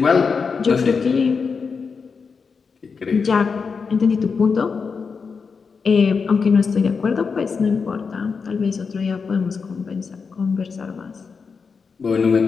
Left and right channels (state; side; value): quieter; right; 5.3 dB